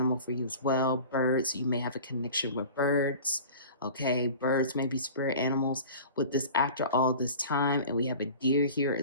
for you as well. Birds, you may have a connection with birds. Okay, birds may be spirit animals with this after all this time. And we have a deer here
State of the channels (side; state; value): both; inverted; correlation -0.39